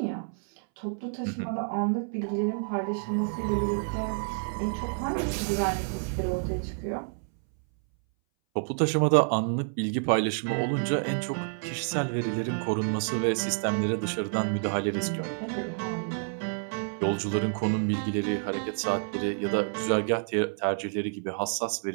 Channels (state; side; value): silent; left; 59 dB below the other